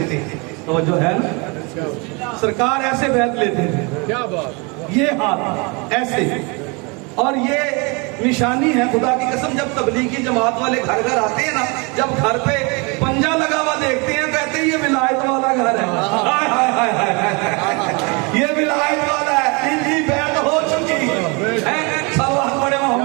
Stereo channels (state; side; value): quieter; left; 30.3 dB